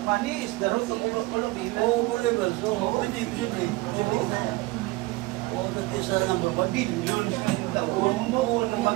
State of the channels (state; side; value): quieter; left; 21.2 dB